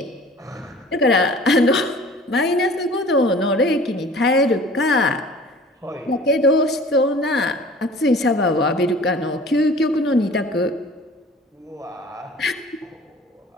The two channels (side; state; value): both; normal; correlation 0.46